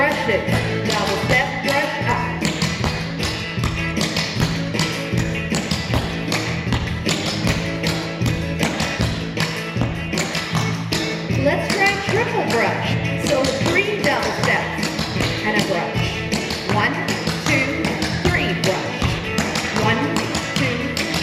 brushes, double step, brush up. Let's try triple brush. So 3 double steps and a brush. 1, 2, 3 brush. 1, 2,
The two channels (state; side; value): identical; both; correlation 1.00